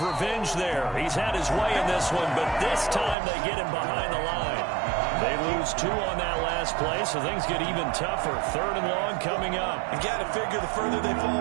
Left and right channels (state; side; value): drops out; left; at 3.2 s